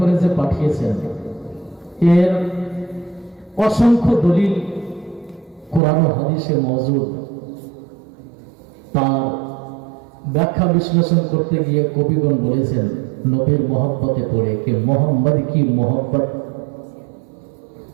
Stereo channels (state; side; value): drops out; left; at 5.8 s